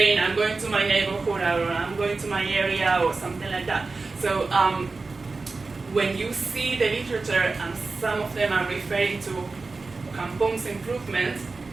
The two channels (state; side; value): quieter; left; 3.9 dB